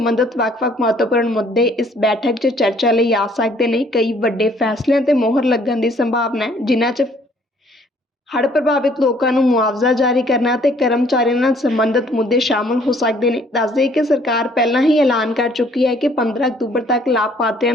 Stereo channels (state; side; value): normal; both; correlation 0.61